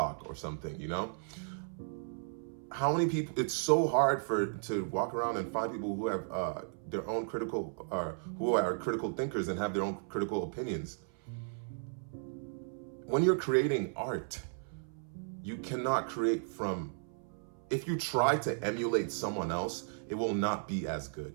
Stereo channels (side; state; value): left; silent; 54 dB below the other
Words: or something, you know? How many people, it's so hard to walk around and find people who have their own who are critical thinkers and have their own critical opinions. When you're creating art, you cannot create if you try to emulate someone else, it will not be as